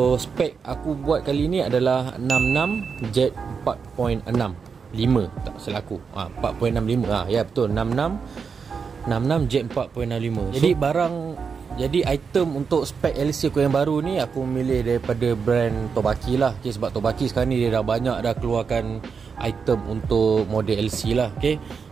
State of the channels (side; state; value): left; quieter; 5.8 dB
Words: spek aku buat kali ni adalah 66 jet 4.65 tak salah aku. 4.65. Ya betul, 66 jet 4.65. Jadi item untuk spek LC aku yang baru ni aku milih daripada brand Tobaki lah. Okay, sebab Tobaki sekarang ni dia dah banyak dah keluarkan item untuk model LC lah. Okay,